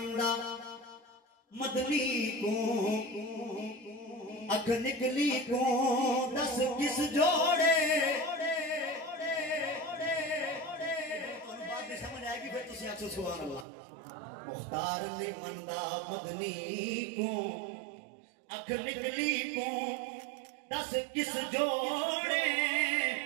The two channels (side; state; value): left; drops out; at 13.7 s